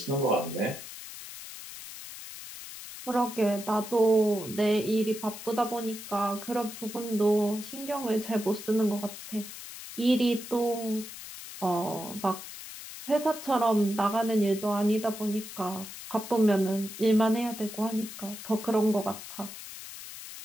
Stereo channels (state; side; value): noise; left; hiss, 12 dB below the sound